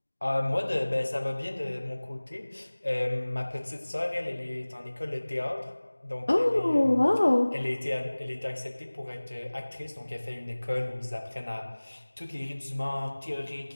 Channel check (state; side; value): inverted; both; correlation -1.00